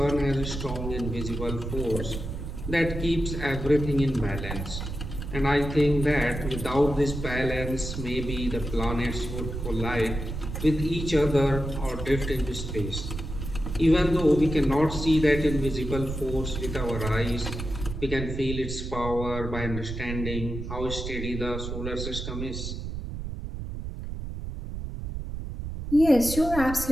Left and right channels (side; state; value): right; noise; rumble, 6 dB below the sound